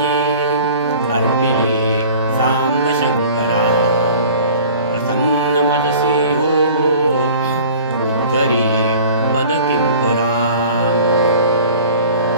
अर्पिली सांब शंकरा प्रसन्न मनसी हो उद्धरी पद किंकरा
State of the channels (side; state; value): both; inverted; correlation -0.44